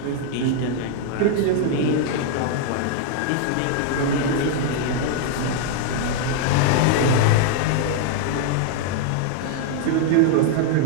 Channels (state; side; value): different; both; correlation 0.00